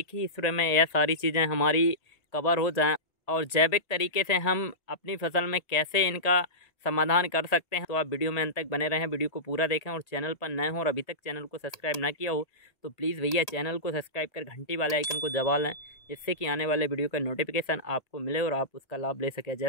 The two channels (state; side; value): late; right; 1.8 ms